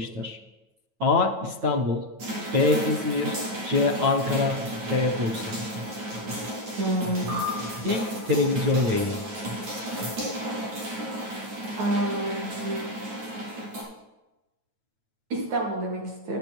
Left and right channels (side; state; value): left; late; 9.2 ms